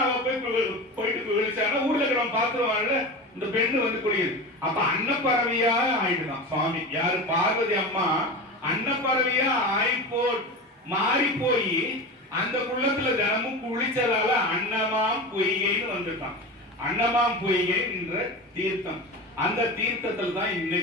போயிட்டு விழிச்சானா ஊர்ல இருக்கிறவன் பாத்துருவான்ல, இந்த பெண்ணு வந்து குளியுது. அப்ப அன்னப்பறவையா ஆயிடுதான் சுவாமி. யாரு? பார்வதி அம்மா அன்னப்பறவையா மாறி போய் அந்த குள்ளத்துல தினமும் குளிச்சதால அன்னமாம் பொய்கைன்னு வந்துட்டான். அன்னமாம் பொய்கை என்ற தீர்த்தம், அந்த தீர்த்தத்தில் தான்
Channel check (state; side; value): normal; both; correlation 0.26